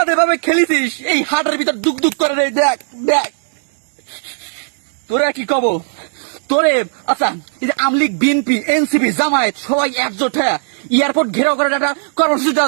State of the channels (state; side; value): silent; left; digital silence